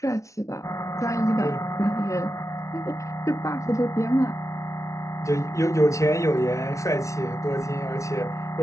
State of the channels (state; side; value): late; right; 0.15 ms